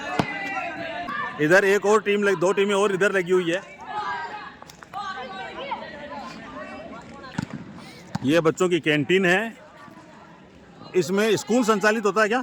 इधर एक और टीम 2 टीमें और इधर लगी हुई है। ये बच्चों की कैंटीन है। इसमें स्कूल संचालित होता है क्या?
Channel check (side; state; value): both; identical; correlation 1.00